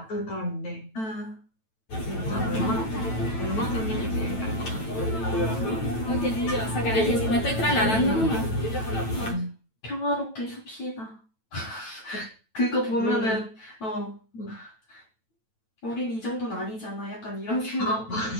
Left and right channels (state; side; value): late; right; 9.1 ms